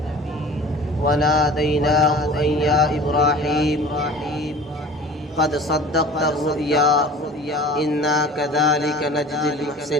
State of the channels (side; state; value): both; normal; correlation 0.42